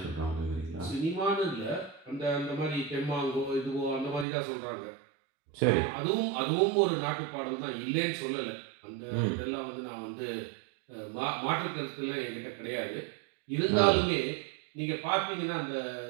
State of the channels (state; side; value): drops out; left; at 4.2 s